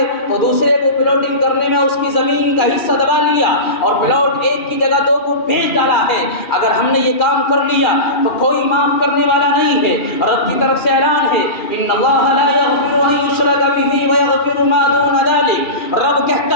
تو دوسرے کو پلاٹنگ کرنے میں اس کی زمین کا حصہ دبا لیا اور پلاٹ ایک کی جگہ دو کو بیچ ڈالا ہے۔ اگر ہم نے یہ کام کر لیا تو کوئی معاف کرنے والا نہیں ہے، رب کی طرف سے اعلان ہے، ان اللہ لا یغفر ان یشرک بہ ویغفر ما دون ذلک۔ رب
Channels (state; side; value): late; right; 2.3 ms